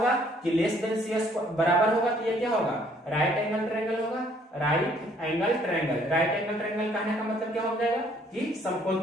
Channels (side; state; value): both; normal; correlation 0.63